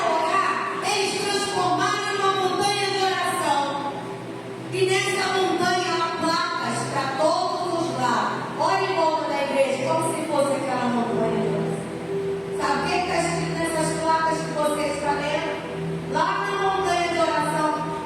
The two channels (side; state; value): both; identical; correlation 1.00